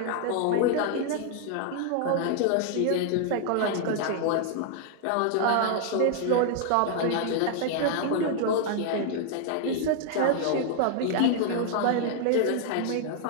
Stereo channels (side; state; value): both; different; correlation 0.00